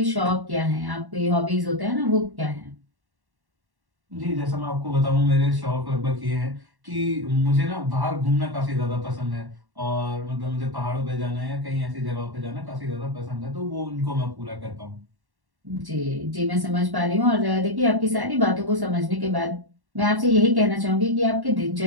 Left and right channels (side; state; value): left; late; 1.1 ms